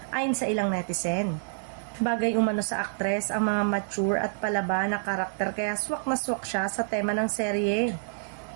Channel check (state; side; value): silent; left; digital silence